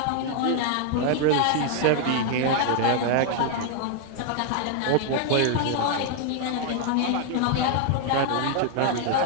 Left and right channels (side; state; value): both; different; correlation 0.00